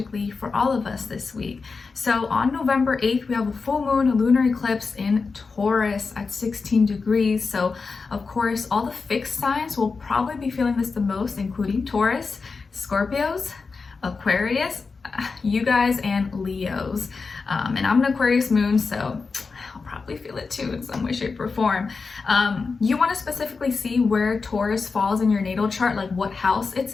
for all of us this week? So on November 8th, we have a full moon, a lunar eclipse in Taurus at 16 degrees. So of course, all the fixed signs will probably be feeling this the most, including Taurus, Scorpios, Aquarius, you guys, and Leos. And I'm an Aquarius moon, so I'll probably feel it too in some way, shape, or form. You want to specifically see where Taurus falls in your natal chart, like what house it's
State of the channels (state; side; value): quieter; right; 4.6 dB